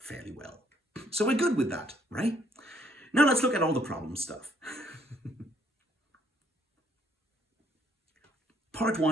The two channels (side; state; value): both; normal; correlation 0.67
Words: well. So we're good with that, right? Now let's look at all the problem stuff. Part